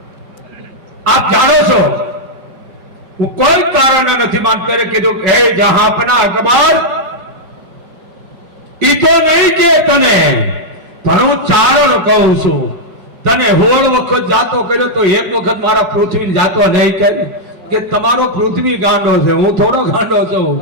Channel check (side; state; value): left; late; 5.2 ms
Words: આપ જાણો છો હું કોઈ કારણ નથી માનતો। કીધું હે જહાંપના અકબર, ઈ તો નહીં કે તને, પણ હું ચારણ કહું છું। તને 16 વખત જાતો કર્યો તો એક વખત મારા પૃથ્વી જાતો નહીં કે તમારો પૃથ્વી ગાંડો છે, હું થોડો ગાંડો છું,